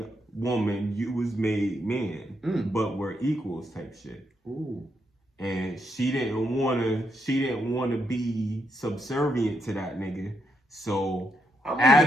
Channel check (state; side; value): normal; both; correlation 0.79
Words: woman, you was made man, but we're equals type shit. Ooh. And she didn't wanna be subservient to that nigga. So I'm